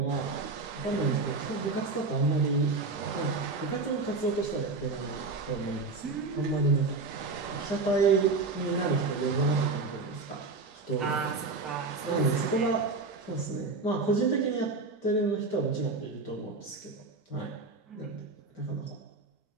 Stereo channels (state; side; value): quieter; left; 3.8 dB